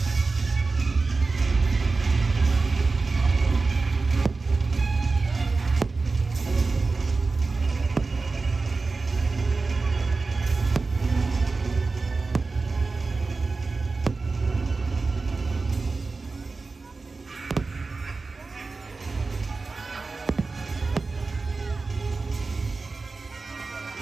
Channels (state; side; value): quieter; left; 3.9 dB